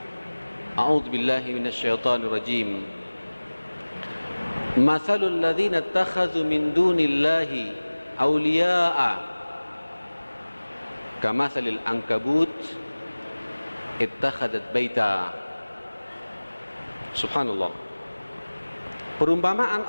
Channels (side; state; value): both; inverted; correlation -1.00